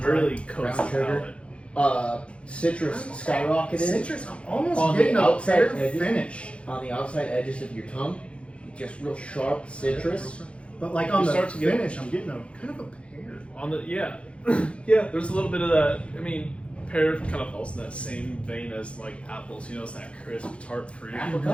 really dry. coats the Brown sugar. palate. Citrus skyrocketed Citrus. I'm almost On the getting a outside fair edges. finish, on the outside edges of your tongue. Just real sharp citrus. but like on You the start to get- finish, I'm getting a kind of a pear. On the yeah, there's a little bit of that. I mean, pear kind of falls in that same vein as like apples. It's that crisp, tart fruit.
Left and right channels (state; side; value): late; right; 0.060 ms